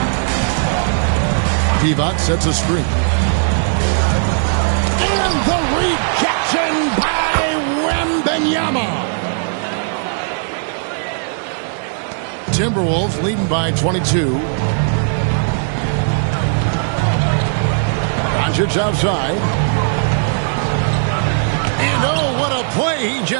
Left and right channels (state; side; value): silent; left; digital silence